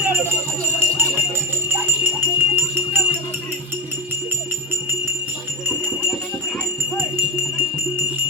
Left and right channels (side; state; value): both; normal; correlation 0.20